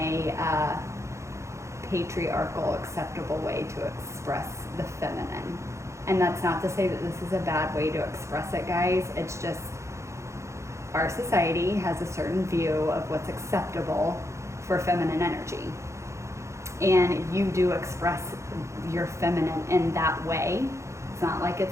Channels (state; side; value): late; left; 0.14 ms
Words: patriarchal acceptable way to express the feminine. And that's not to say that this is a bad way to express it, guys. It's just our society has a certain view of what's acceptable for feminine energy. And you do express your feminine in that way. It's not like